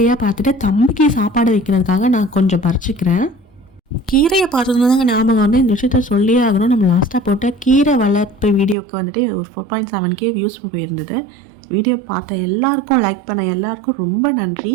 பார்த்துட்டு தம்பிக்கு சாப்பாடு வைக்கிறதுக்காக நான் கொஞ்சம் பறிச்சுக்கிறேன். கீரையை பார்த்ததுனால தாங்க ஞாபகம் வந்து இந்த விஷயத்த சொல்லியே ஆகணும். நம்ம லாஸ்ட்டாக போட்ட கீரை வளர்ப்பு வீடியோக்கு வந்துட்டு ஒரு 4.7K வியூஸ் போயிருந்தது. வீடியோ பார்த்த எல்லாருக்கும், லைக் பண்ண எல்லாருக்கும் ரொம்ப நன்றி.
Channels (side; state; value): left; drops out; at 8.8 s